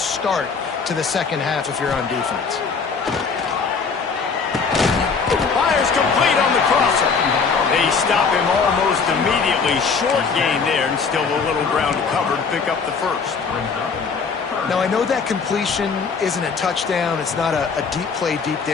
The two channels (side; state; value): right; quieter; 5.3 dB